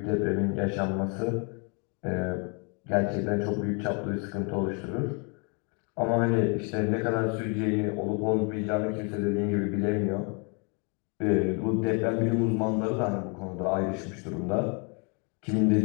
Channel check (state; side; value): quieter; right; 35.3 dB